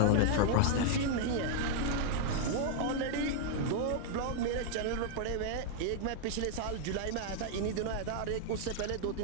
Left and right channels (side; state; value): both; different; correlation 0.00